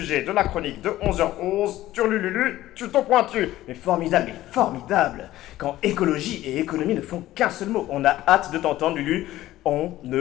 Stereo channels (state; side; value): quieter; right; 15.1 dB